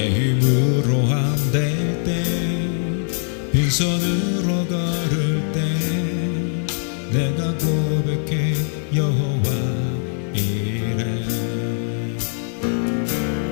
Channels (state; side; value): silent; right; 63 dB below the other